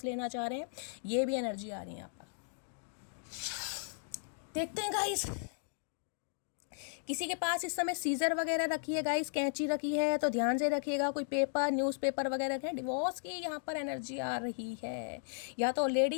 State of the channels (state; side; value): silent; right; digital silence